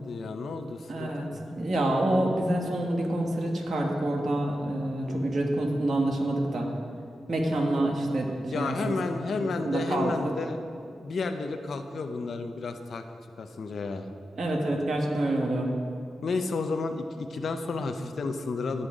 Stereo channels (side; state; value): both; normal; correlation 0.89